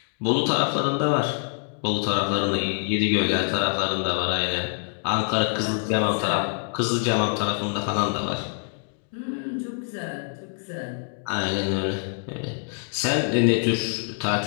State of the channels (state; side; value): silent; right; 62 dB below the other